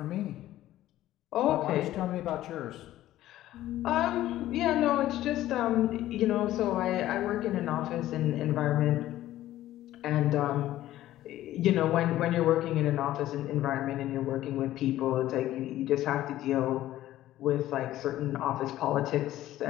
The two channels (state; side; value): quieter; right; 14.2 dB